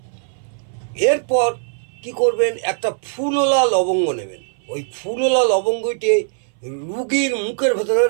এরপর কি করবেন, একটা ফুলওলা লবঙ্গ নেবেন, ওই ফুলওলা লবঙ্গটি রুগীর মুখের ভেতরে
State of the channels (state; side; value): silent; left; 60 dB below the other